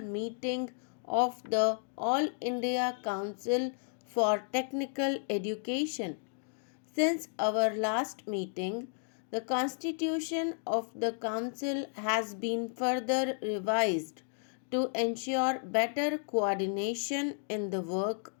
meeting of the All India Council for Technical Education. Since our last meeting, the constitution of the council has been further revised to ensure better coordination in the work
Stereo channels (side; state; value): right; silent; 56 dB below the other